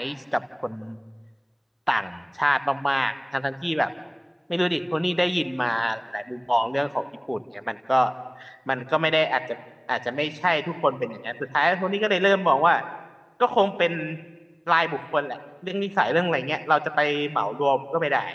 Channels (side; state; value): both; identical; correlation 1.00